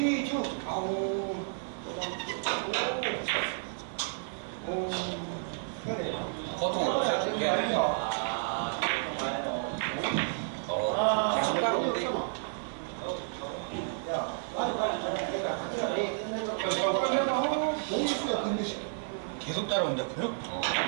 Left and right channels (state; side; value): silent; left; 57 dB below the other